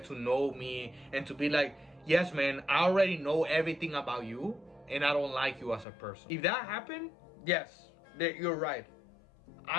to know me and to be like, yes, man, I already know everything about you and I don't like you as a person. If that happened, yes, you're right.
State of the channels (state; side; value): drops out; right; at 5.9 s